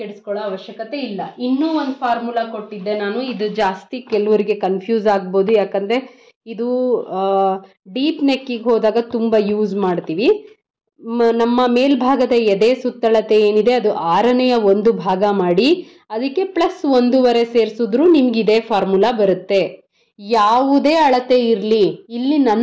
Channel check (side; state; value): both; identical; correlation 1.00